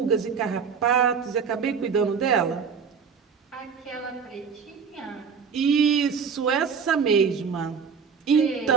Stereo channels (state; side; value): quieter; left; 6.2 dB